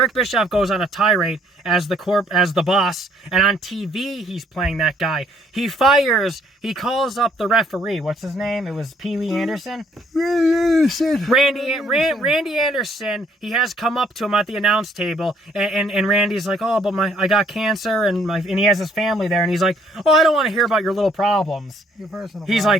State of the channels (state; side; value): normal; both; correlation 0.65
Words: Bischoff goes on a tirade as the boss, and on TV he's playing that guy. He calls up the referee. What's his name? It was Pee Wee Anderson? Randy Anderson. He has come up to him at the announce table, and Randy's like, oh, but I got cancer, and he has his family there, and he's like, oh, I don't want to hear about your little problems. Your personal He's